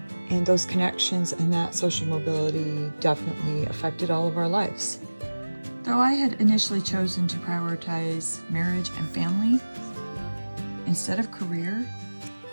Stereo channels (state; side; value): inverted; both; correlation -1.00